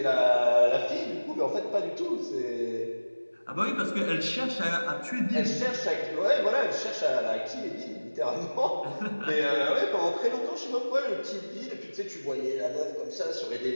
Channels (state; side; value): inverted; both; correlation -1.00